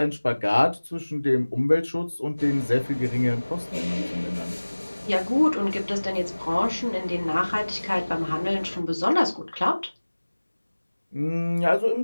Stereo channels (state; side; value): inverted; both; correlation -1.00